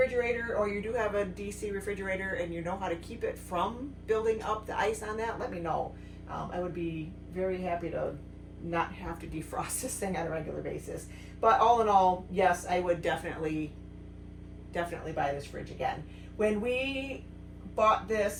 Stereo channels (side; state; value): both; identical; correlation 1.00